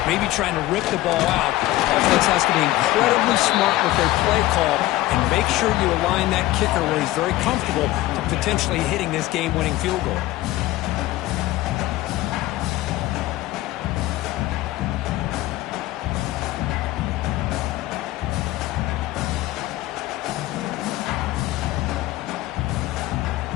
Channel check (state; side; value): quieter; right; 16.8 dB